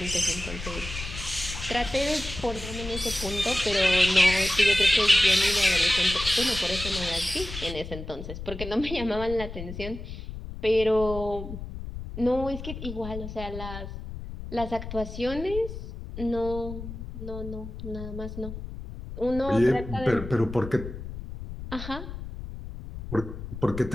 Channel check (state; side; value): noise; left; rumble, 9 dB below the sound